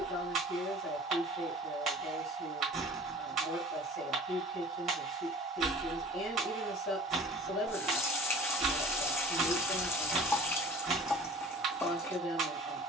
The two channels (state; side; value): normal; both; correlation 0.45